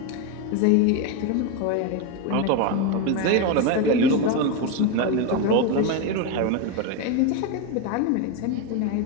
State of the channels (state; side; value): different; both; correlation 0.03